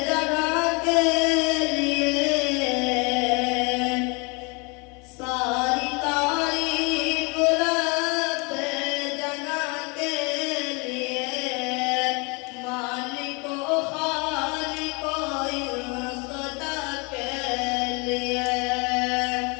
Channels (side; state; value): right; quieter; 30.3 dB